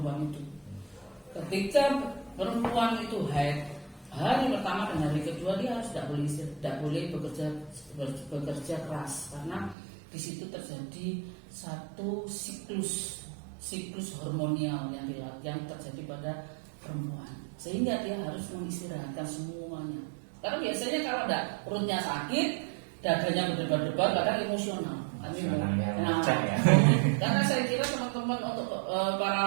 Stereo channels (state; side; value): drops out; left; at 9.8 s